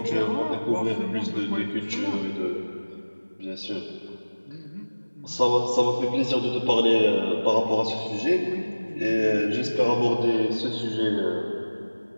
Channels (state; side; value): inverted; both; correlation -1.00